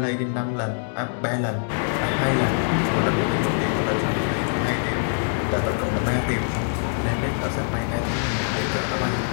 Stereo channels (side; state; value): right; silent; digital silence